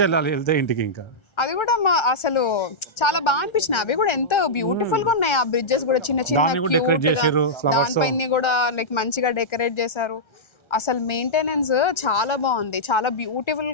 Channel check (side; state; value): right; late; 1.3 ms